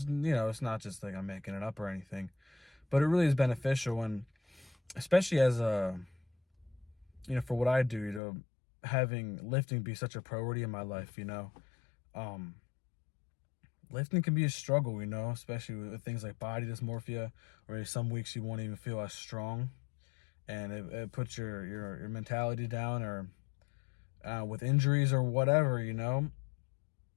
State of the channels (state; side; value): drops out; right; at 8.2 s